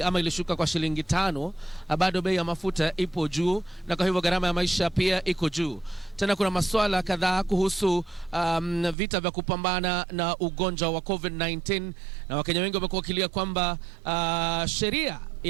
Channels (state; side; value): drops out; left; at 9.0 s